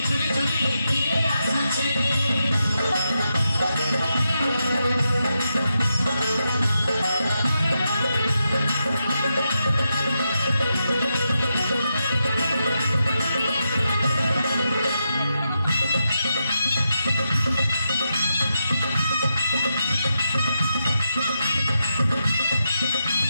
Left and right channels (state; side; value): inverted; both; correlation -0.86